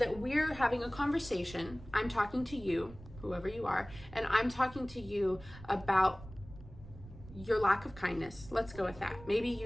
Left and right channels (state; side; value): noise; right; rumble, 17 dB below the sound